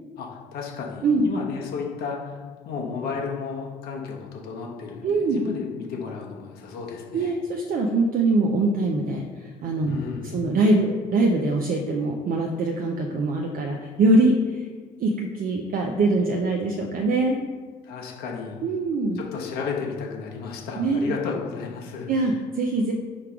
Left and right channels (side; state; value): both; normal; correlation 0.50